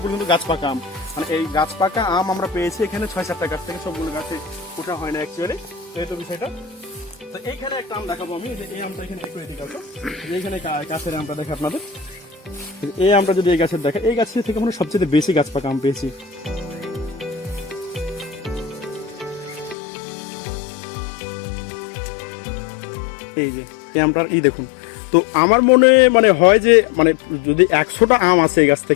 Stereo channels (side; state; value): right; drops out; at 19.8 s